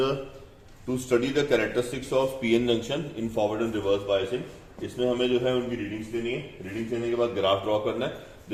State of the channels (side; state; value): both; identical; correlation 1.00